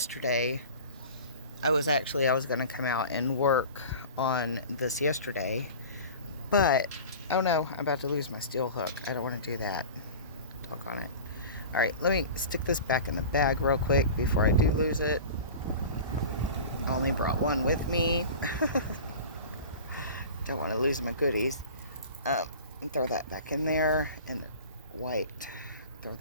I was going to come out and work on this yesterday, but oh no, I'm about to lose my steel hook. I don't want to do that. Talk on it. All right, let me stick this back in the bag real quick before I do lose it. I only brought one with me. Don't want to lose my goodies. Throw that back in there, and the white, throw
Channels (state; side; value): inverted; both; correlation -0.37